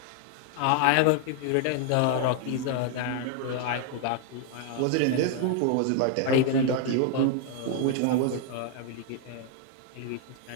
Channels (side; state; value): both; different; correlation 0.00